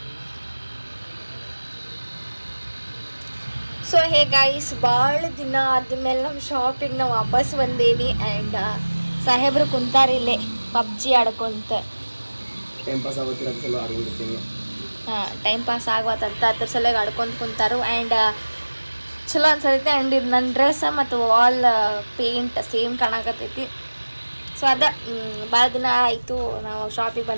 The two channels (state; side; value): inverted; both; correlation -1.00